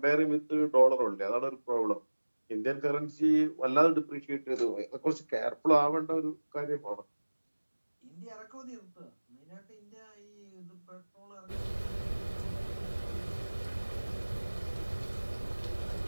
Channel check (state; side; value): inverted; both; correlation -1.00